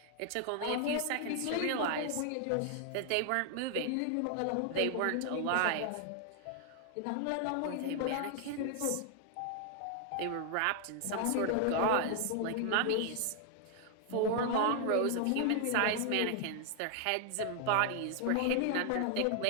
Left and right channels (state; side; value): different; both; correlation 0.00